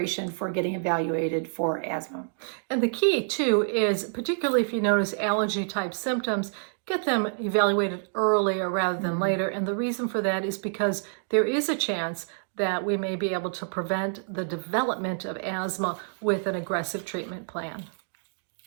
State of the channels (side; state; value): left; silent; digital silence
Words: for getting evaluated for asthma. And the key too is, particularly if you notice allergy type symptoms, get them evaluated earlier rather than later. And the reason for that is because there is a chance that we may be able to prevent the development of asthma with an aggressive treatment plan.